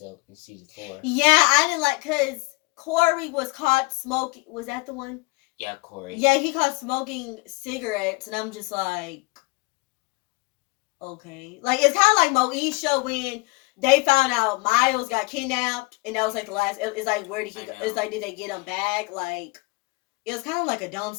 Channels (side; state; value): right; quieter; 26.3 dB